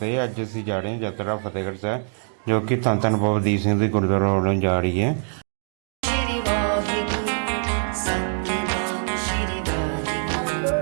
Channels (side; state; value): left; silent; digital silence